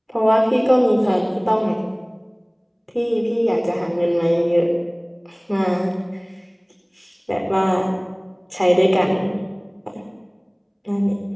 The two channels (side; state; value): both; identical; correlation 1.00